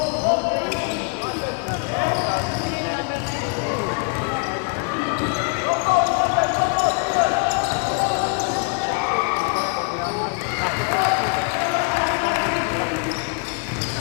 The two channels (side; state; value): right; quieter; 35.9 dB